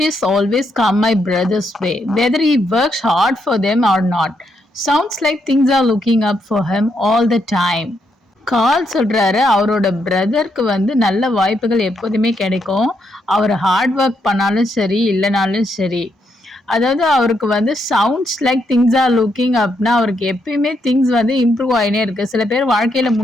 always come my brother's way whether he works hard for them or not. Sounds like things are looking up for him all the time. கால் சொல்கிறாரு, அவரோட பிரதருக்கு நல்ல வாய்ப்புகள் எப்போதுமே கிடைக்கும். அவர் ஹார்ட் ஒர்க் பண்ணாலும் சரி இல்லைனாலும் சரி. அதாவது அவருக்கு sounds like things are looking அப்னா அவருக்கு எப்பயுமே திங்ஸ் இம்ப்ரூவ் ஆகினே இருக்குது. சில பேர் வாழ்க்கையில்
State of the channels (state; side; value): normal; both; correlation 0.78